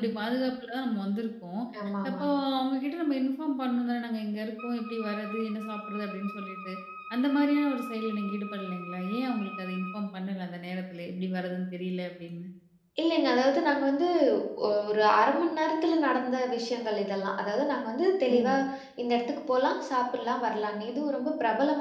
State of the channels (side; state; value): both; identical; correlation 1.00